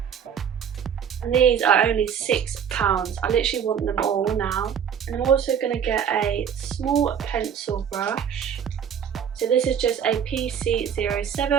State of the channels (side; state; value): left; quieter; 8.1 dB